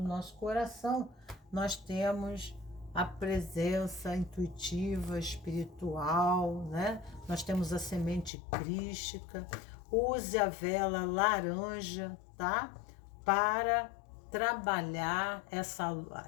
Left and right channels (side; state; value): right; drops out; at 8.3 s